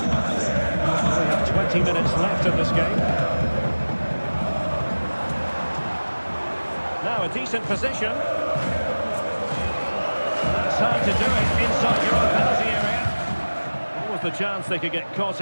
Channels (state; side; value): inverted; both; correlation -1.00